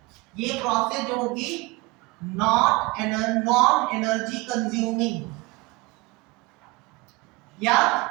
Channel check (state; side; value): quieter; left; 23.7 dB